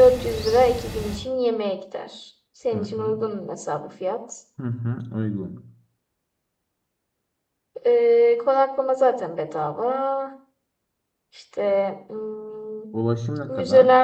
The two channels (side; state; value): both; identical; correlation 1.00